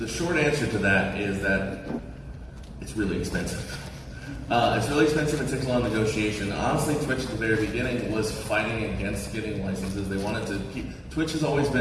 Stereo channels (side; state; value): both; identical; correlation 1.00